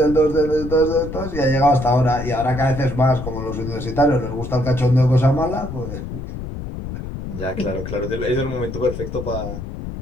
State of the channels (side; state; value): left; noise; rumble, 8 dB below the sound